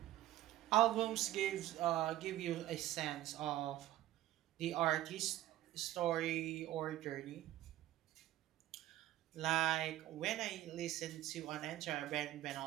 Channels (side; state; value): left; quieter; 14.5 dB